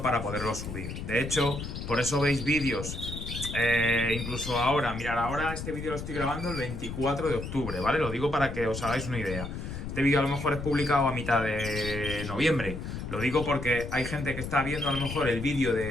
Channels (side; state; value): left; noise; rumble, 7 dB below the sound